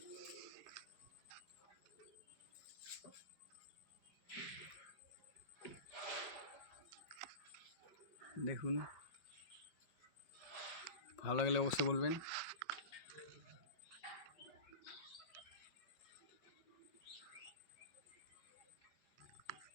দেখুন, ভালো লাগলে অবশ্যই বলবেন।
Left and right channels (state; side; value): late; right; 5.3 ms